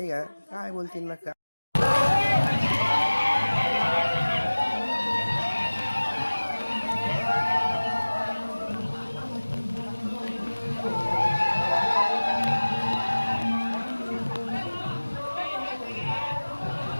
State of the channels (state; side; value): inverted; both; correlation -1.00